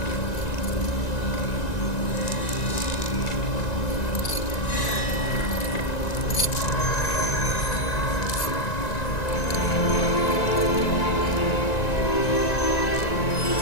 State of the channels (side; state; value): right; late; 1.9 ms